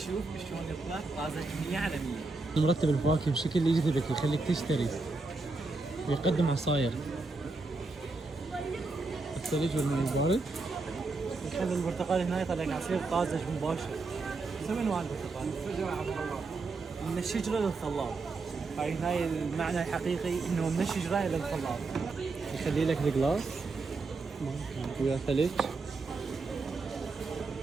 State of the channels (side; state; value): left; quieter; 3.7 dB